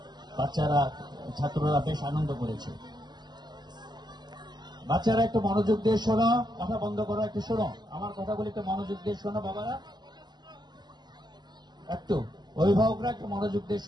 ছাত্ররা বেশ আনন্দ করেছে। বাচ্চারা একটু মনোযোগ দিয়ে শোনো, কথা বন্ধ করো, একটু শোনো আমার কথাগুলি, একটু মনোযোগ দিয়ে শোনো বাবারা, একটু অভিভাবকরা একটু মনোযোগ দিয়ে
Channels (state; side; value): late; left; 0.21 ms